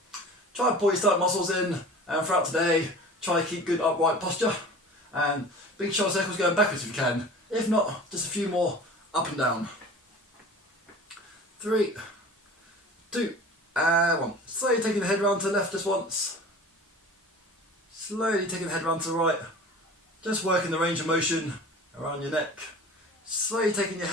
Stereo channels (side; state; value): both; normal; correlation 0.40